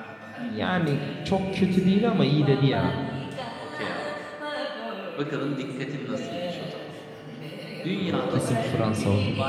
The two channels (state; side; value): identical; both; correlation 1.00